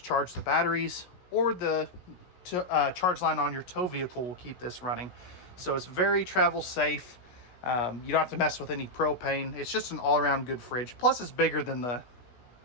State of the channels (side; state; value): right; late; 16 ms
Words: charge the batteries, or the charge line on your tow vehicle will keep this running. So it's very travel safe. You don't have to mess with any propane. It's just an all-around good fridge. Plus, it's bigger than the